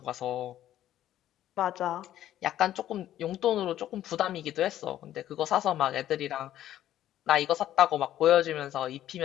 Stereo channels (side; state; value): right; quieter; 12.4 dB